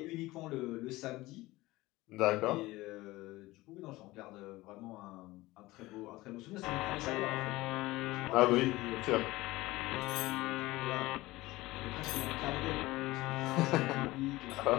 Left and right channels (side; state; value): right; quieter; 19.2 dB